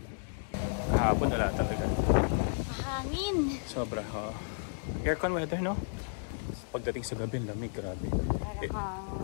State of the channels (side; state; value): right; silent; digital silence